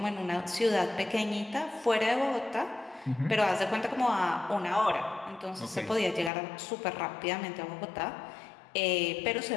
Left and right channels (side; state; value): right; drops out; at 6.3 s